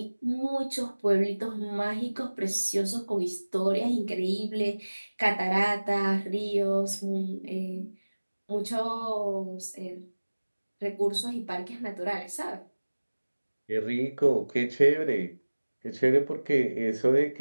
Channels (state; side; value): inverted; both; correlation -1.00